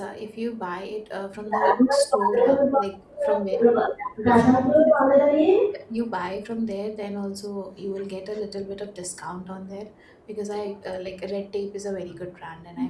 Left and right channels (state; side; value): identical; both; correlation 1.00